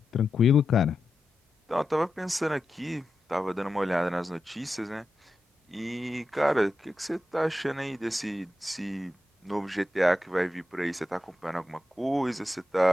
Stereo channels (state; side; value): normal; both; correlation 0.90